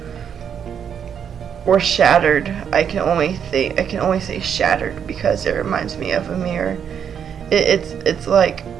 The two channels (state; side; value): quieter; left; 8.0 dB